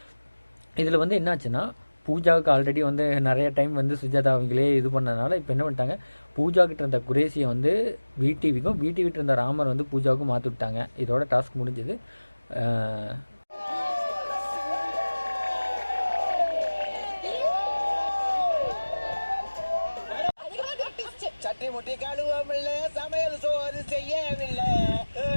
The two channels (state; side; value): inverted; both; correlation -1.00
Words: இதில் வந்து என்னாச்சுன்னா பூஜாவுக்கு ஆல்ரெடி வந்து நிறைய டைம் வந்து சுஜாதா அவங்களே இது பண்ணதுனால இப்போ என்ன பண்ணிட்டாங்க, பூஜா கிட்ட இருந்த குரேஷியை வந்து விடிவிக்கும், விடிவிட்டு இருந்த ராமர் வந்து பூஜாவுக்கும் மாற்றி விட்டாங்க. இதோட டாஸ்க் முடிஞ்சது. சட்டி முட்டி கழுவமில்ல, சமையல் சோறு செய்யவில்லை,